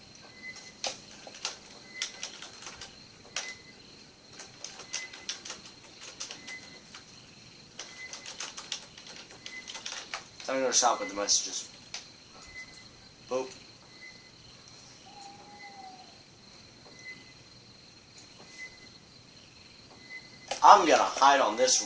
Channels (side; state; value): both; identical; correlation 1.00